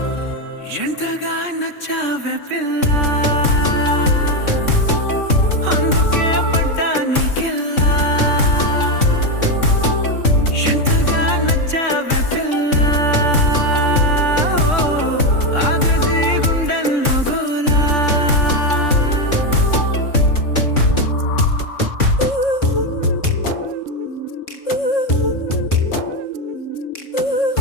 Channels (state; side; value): late; right; 3.6 ms